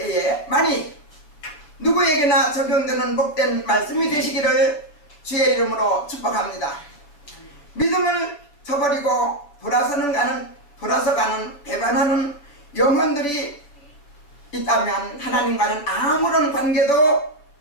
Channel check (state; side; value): late; right; 6.9 ms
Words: 만일 누구에게나 적용되는 복된 말씀이 되시기를 주의 이름으로 축복합니다. 믿음을 저버리고 돌아서 가는 배반하는 영혼들이 있다면 하나님과는 아무런 관계도